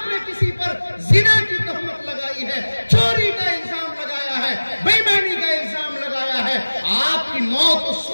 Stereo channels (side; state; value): both; inverted; correlation -1.00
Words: نے کسی پر زنا کی تہمت لگائی ہے، چوری کا الزام لگایا ہے، بے ایمانی کا الزام لگایا ہے، آپ کی موت اس